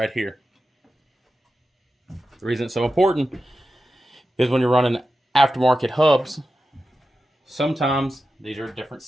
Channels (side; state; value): both; normal; correlation 0.92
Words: here. The reason it's so important is when you're running aftermarket hubs, sometimes these are a different